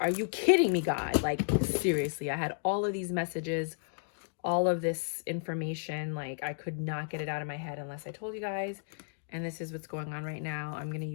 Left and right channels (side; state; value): right; silent; digital silence